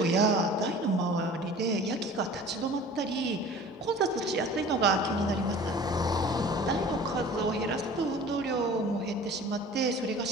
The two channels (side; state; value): both; normal; correlation 0.43